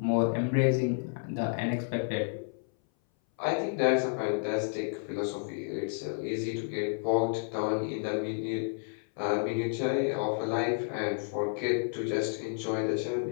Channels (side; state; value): right; silent; 57 dB below the other